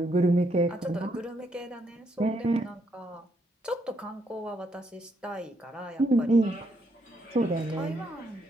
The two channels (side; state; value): both; normal; correlation 0.75